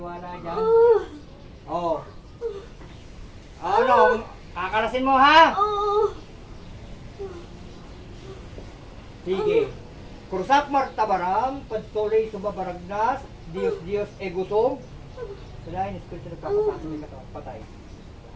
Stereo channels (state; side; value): identical; both; correlation 1.00